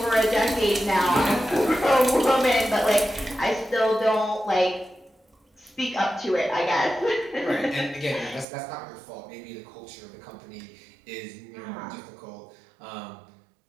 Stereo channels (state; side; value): drops out; left; at 8.5 s